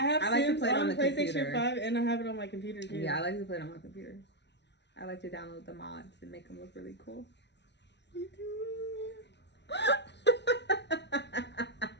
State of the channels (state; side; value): late; right; 0.50 ms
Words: like to play it on the PlayStation computer. 5, and I have it on my computer too. Yeah, I like to play it on my computer. I like to download the mods and make them look really cool. Me too.